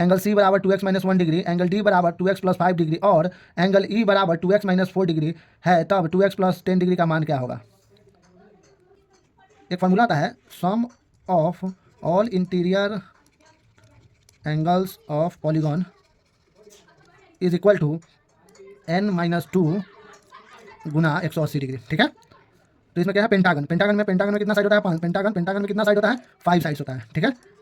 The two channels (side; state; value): both; identical; correlation 1.00